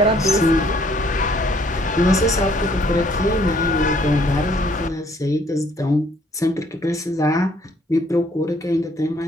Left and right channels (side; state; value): both; normal; correlation 0.63